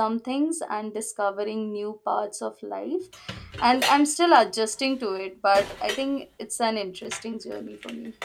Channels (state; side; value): identical; both; correlation 1.00